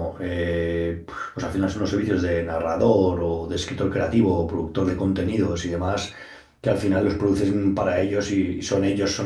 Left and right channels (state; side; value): identical; both; correlation 1.00